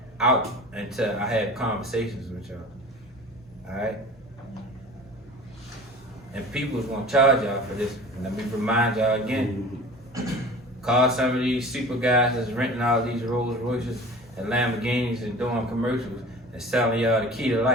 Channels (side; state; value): both; normal; correlation 0.40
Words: out until I have conversations with y'all. All right? And people is going to charge y'all for this. And let me remind y'all again. Call some of these super guys that's renting all these Rolls Royces and Lamborghinis and doing commercials and selling y'all the key to